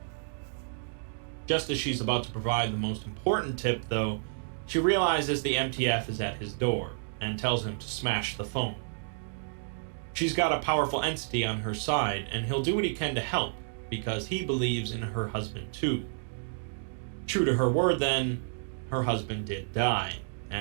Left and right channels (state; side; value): silent; left; digital silence